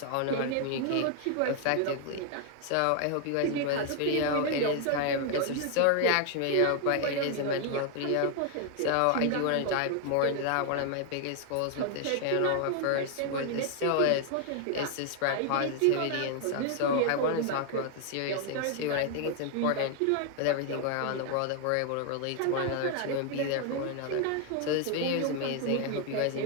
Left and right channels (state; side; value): different; both; correlation 0.00